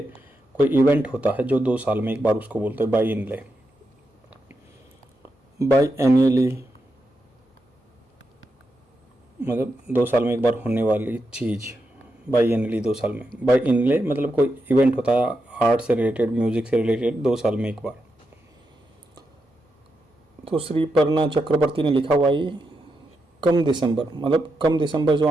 कोई इवेंट होता है जो 2 साल में एक बार, उसको बोलते हैं बाई इनले। बाई एनुअली मतलब 2 साल में एक बार होने वाली चीज़। बाई एनली 2 साल में, बाई इनले मतलब कोई इवेंट होता है आर्ट से रिलेटेड, म्यूजिक से रिलेटेड, 2 साल में एक बार। तो श्री पर्णा चक्रवर्ती ने लिखा हुआ ये कम दिसंबर, मतलब कम दिसंबर जो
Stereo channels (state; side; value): normal; both; correlation 0.85